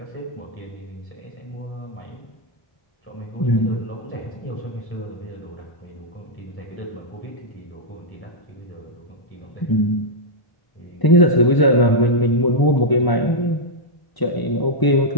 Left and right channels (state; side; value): late; right; 1.0 ms